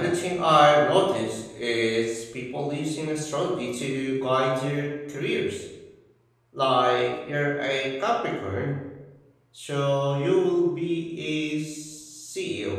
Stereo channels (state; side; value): identical; both; correlation 1.00